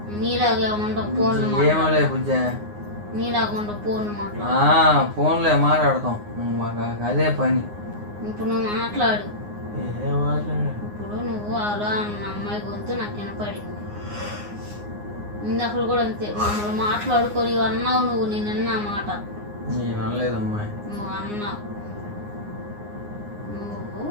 నీలాగే ఉండవు ఫోన్లు. ఏమోలే బుజ్జా. నీలాగా ఉండవు ఫోన్లు మాట్లాడు. ఫోన్లే మాట్లాడతాం మాకు అదే పని. ఇప్పుడు నువ్వు మాట్లాడు. మాట్లాడు. ఇప్పుడు నువ్వు అలా అన్న అమ్మాయి గొంతు నాకు వినపడింది. ఇందాక కూడా అంతే మమ్మల్ని మాట్లాడుకొని అన్నావు నువ్వు. నేను అన్నా మాట. నేను అనలేదమ్మాయి. నువ్వు అన్నావు. నువ్వు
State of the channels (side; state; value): left; late; 9.6 ms